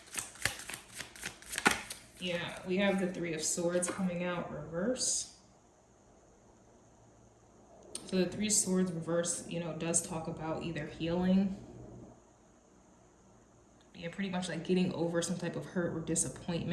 Yeah, we have the Three of Swords coming out reverse. So the Three of Swords reverse, you know, does talk about either healing, yeah, pretty much like getting over some type of hurt or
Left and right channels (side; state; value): both; identical; correlation 1.00